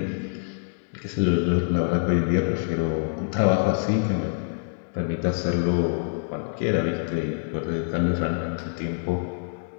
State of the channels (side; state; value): right; silent; digital silence